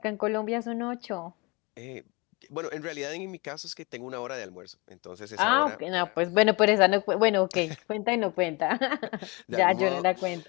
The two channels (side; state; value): right; quieter; 27.2 dB